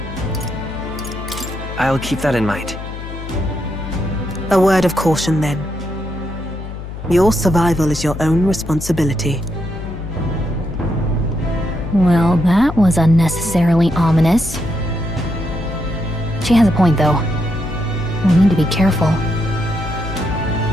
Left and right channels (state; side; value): noise; left; hum, 10 dB below the sound